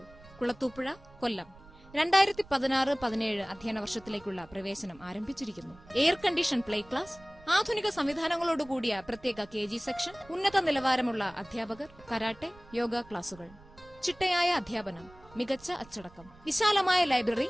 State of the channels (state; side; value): noise; right; rumble, 23 dB below the sound